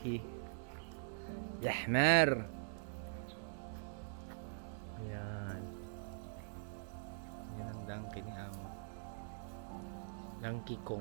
Yahmer. Yan. Yan ang donkey ni Amo. Donkey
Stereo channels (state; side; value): silent; left; digital silence